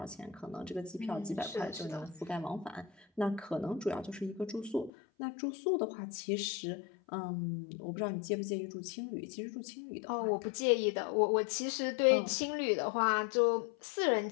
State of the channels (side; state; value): right; drops out; at 4.9 s